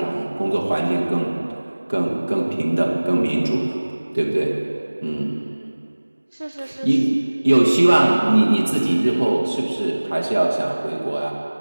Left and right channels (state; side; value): inverted; both; correlation -1.00